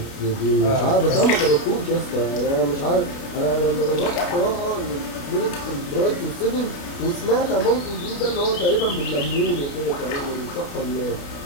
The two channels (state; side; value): late; right; 29 ms